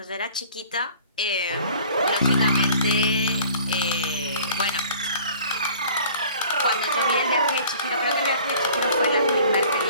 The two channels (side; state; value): both; inverted; correlation -0.50